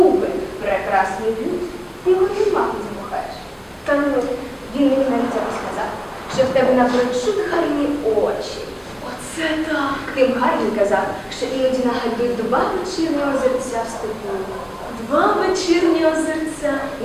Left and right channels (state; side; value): identical; both; correlation 1.00